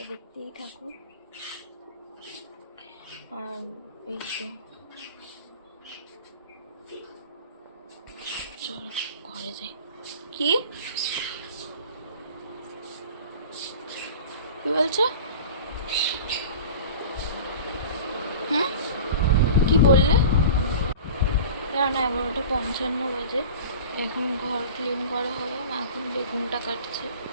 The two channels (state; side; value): inverted; both; correlation -0.37